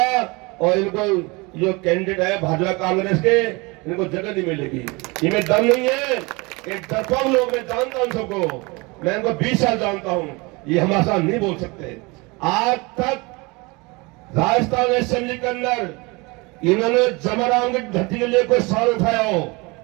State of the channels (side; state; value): left; quieter; 26.2 dB